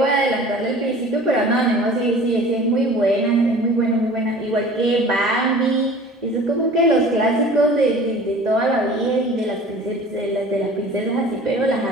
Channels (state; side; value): normal; both; correlation 0.44